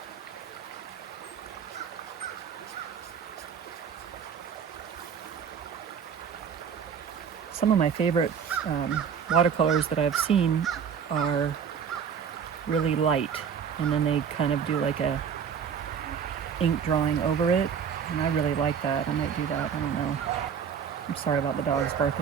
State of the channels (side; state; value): left; quieter; 7.3 dB